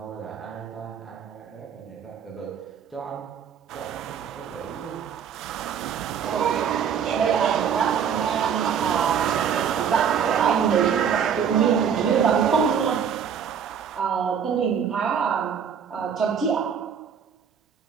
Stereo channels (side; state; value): left; quieter; 7.6 dB